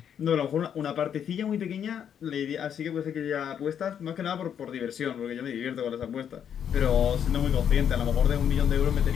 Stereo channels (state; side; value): quieter; right; 8.6 dB